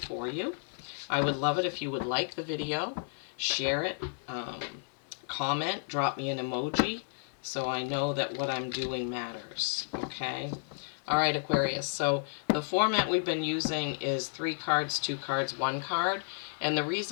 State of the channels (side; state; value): right; silent; digital silence